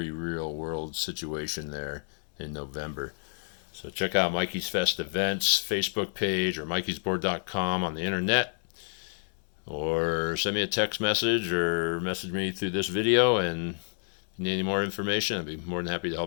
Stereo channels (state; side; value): silent; right; digital silence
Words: real world situation there in November. So check out Mikey's Fest Events Facebook page or mikeysboard.com on the internet, or send me a text message or message me through this video, and if you need any more information, I'd be more than happy to